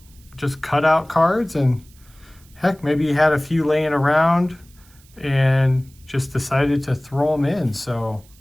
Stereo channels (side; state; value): right; noise; hiss, 28 dB below the sound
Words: just cutout cards, and heck, maybe he had a few laying around and just decided to throw them in. So